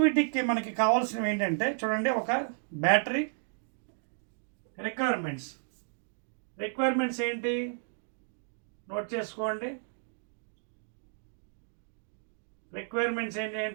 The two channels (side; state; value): left; silent; digital silence